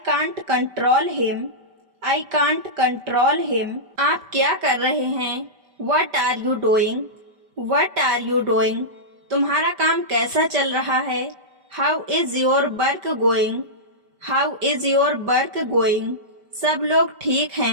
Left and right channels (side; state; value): left; late; 5.1 ms